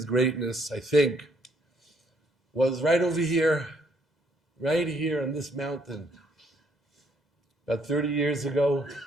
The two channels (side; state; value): both; normal; correlation 0.69